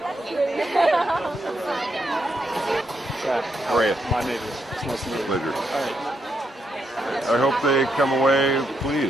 How are you? My neighbor. It's nice to meet you. Pleasure. I hope they come away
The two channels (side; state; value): both; normal; correlation 0.79